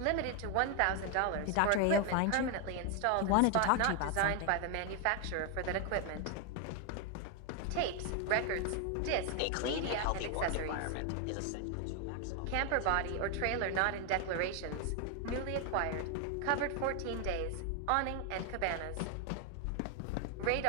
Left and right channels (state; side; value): different; both; correlation 0.01